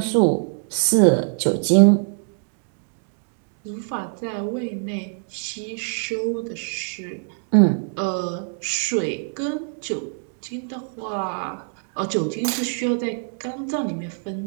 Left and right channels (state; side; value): silent; left; 59 dB below the other